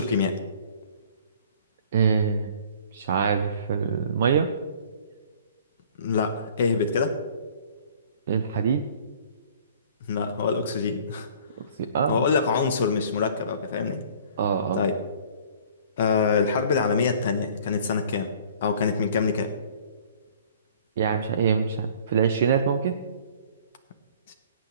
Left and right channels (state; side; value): inverted; both; correlation -0.51